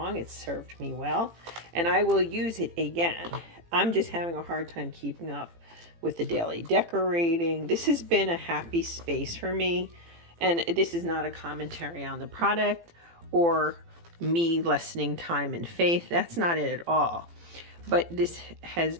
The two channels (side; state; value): left; late; 18 ms